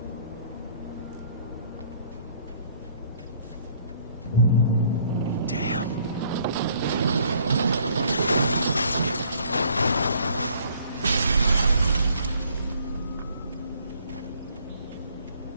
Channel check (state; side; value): inverted; both; correlation -0.62